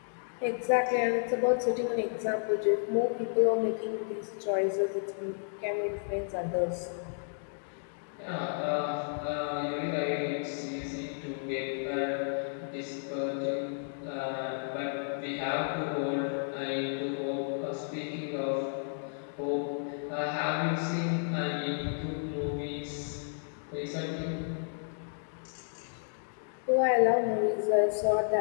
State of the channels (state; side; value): silent; right; digital silence